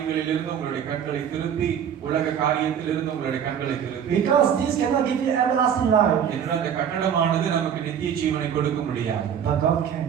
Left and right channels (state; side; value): quieter; left; 8.5 dB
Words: உங்களுடைய கண்களை திருப்பி உலக காரியத்திலிருந்து உங்களுடைய கண்களை திருப்பி, Because this cannot give you everlasting life. என்ற அந்த கட்டடமானது நமக்கு நித்திய ஜீவனை கொடுக்க முடியாது. But God can.